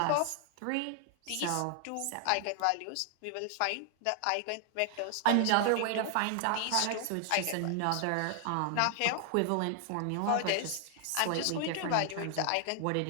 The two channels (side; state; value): both; different; correlation 0.00